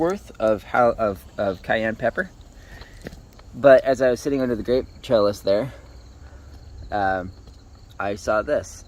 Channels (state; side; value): identical; both; correlation 1.00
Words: of cayenne pepper. But as I was sitting under the grape trellis there, I saw this.